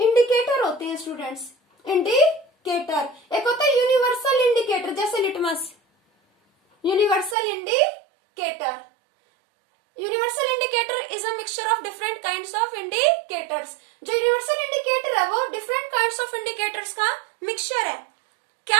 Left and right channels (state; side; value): drops out; left; at 7.4 s